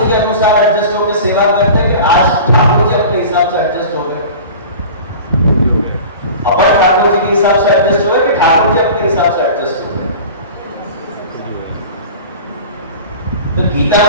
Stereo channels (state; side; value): inverted; both; correlation -0.38